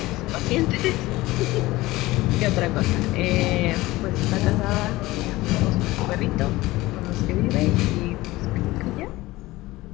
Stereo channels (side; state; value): right; quieter; 18.9 dB